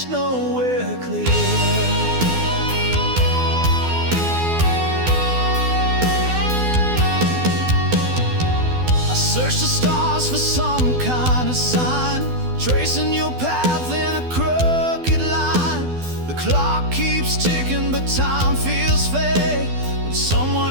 nowhere clear. I search the stars for some kind of sign, tracing your path in a crooked line. The clock keeps ticking, but time feels fake when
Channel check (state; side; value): late; left; 12 ms